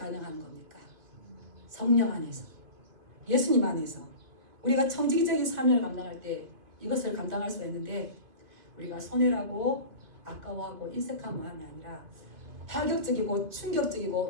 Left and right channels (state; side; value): late; left; 2.6 ms